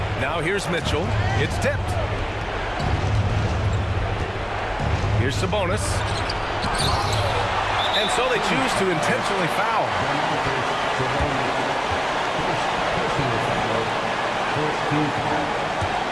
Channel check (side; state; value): both; identical; correlation 1.00